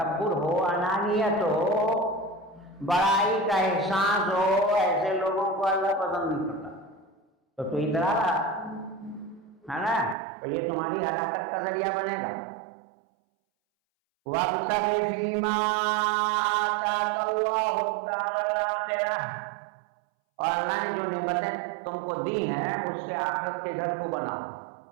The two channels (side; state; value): left; drops out; at 10.2 s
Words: ہو، انانیت ہو، بڑائی کا احساس ہو، ایسے لوگوں کو اللہ پسند نہیں کرتا۔ تو اترا رہا ہے نا، تو یہ تمہاری ہلاکت کا ذریعہ بنے گا۔ وَابْتَغِ فِيمَا آتَاكَ اللَّهُ الدَّارَ الْآخِرَةَ، اور اللہ نے جو نعمتیں تم کو دی ہیں اس سے آخرت کے گھر کو بناؤ۔